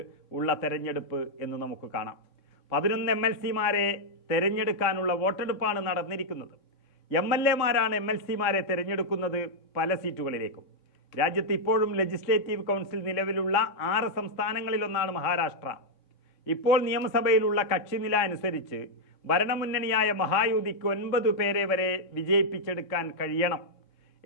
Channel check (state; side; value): late; right; 3.6 ms